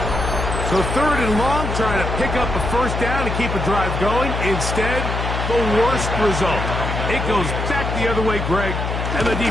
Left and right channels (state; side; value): noise; left; hum, 3 dB below the sound